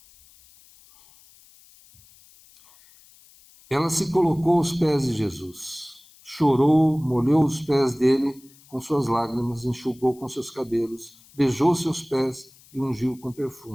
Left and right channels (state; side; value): noise; left; hiss, 26 dB below the sound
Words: Ela se colocou aos pés de Jesus, chorou, molhou os pés dele com suas lágrimas, enxugou com seus cabelos, beijou seus pés e ungiu com